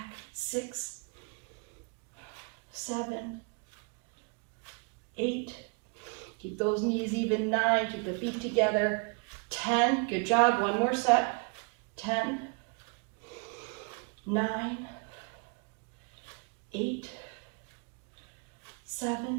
6, 7, 8, keep those knees even, 9, keep the feet together, 10, good job, one more set, 10, 9, 8,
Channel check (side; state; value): left; quieter; 35.4 dB